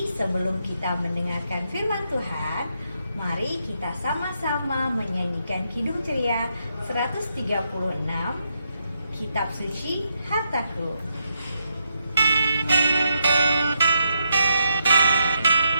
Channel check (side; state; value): both; inverted; correlation -0.81